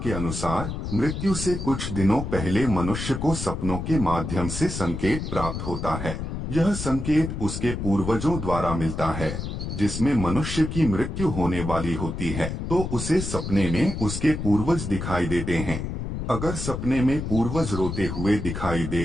अनुसार मृत्यु से कुछ दिनों पहले मनुष्य को सपनों के माध्यम से संकेत प्राप्त होता है। यह संकेत उसके पूर्वजों द्वारा मिलता है। जिसमें मनुष्य की मृत्यु होने वाली होती है तो उसे सपने में उसके पूर्वज दिखाई देते हैं। अगर सपने में पूर्वज रोते हुए दिखाई दे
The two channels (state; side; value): noise; left; rumble, 5 dB below the sound